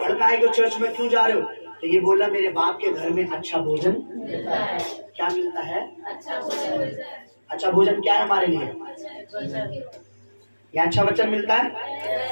कि चर्च में क्यों जा रहे हो तो ये बोलना, मेरे बाप के घर में अच्छा भोजन मिलता है। क्या मिलता है? अच्छा भोजन मिलता है। अच्छा भोजन क्या है हमारे लिए? या अच्छा वचन मिलता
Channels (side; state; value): both; inverted; correlation -1.00